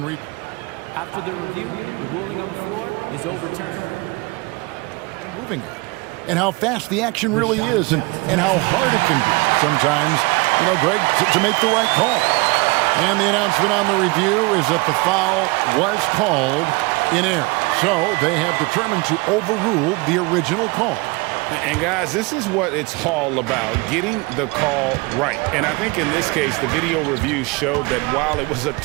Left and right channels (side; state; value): left; quieter; 26.1 dB